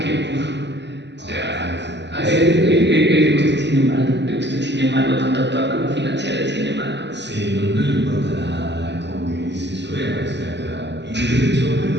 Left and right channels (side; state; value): left; late; 0.51 ms